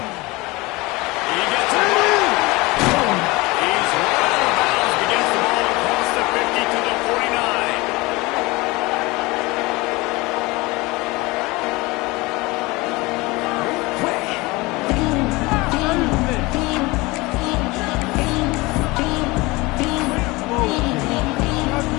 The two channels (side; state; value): right; quieter; 22.8 dB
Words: He gets it. He's right out of bounds, but gets the ball across the 50 to the 49.